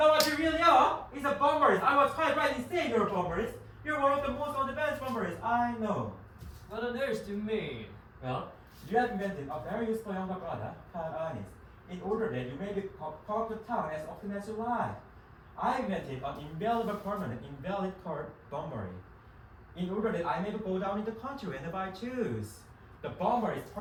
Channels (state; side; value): identical; both; correlation 1.00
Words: what you really are is a bomberist. I was quite right in saying you're a bomberist. You're one of the most on-the-bench bomberists I know. What on earth do you mean? Well, you have invented a very useful younger brother called Earnest, in order that you may be called to town as often as you like. I invented an invaluable permanent invalid card bombery, in order that I may go down in the country whenever I choose. The bomber is